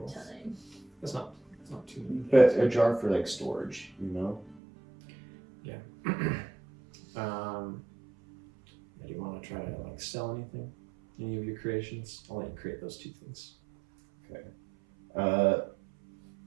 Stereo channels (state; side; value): drops out; left; at 4.6 s